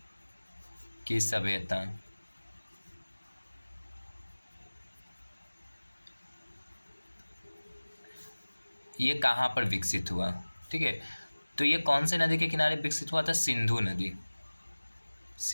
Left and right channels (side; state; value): both; inverted; correlation -1.00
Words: की सभ्यता ये कहाँ पर विकसित हुआ? ठीक है, तो ये कौन से नदी के किनारे विकसित हुआ था? सिंधु नदी।